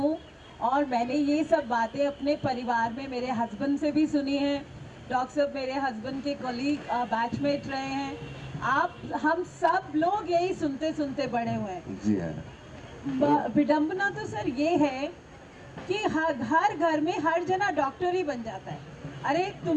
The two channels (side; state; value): both; identical; correlation 1.00